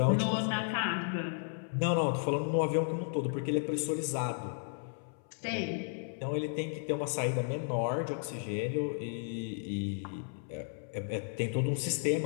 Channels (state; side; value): silent; right; 55 dB below the other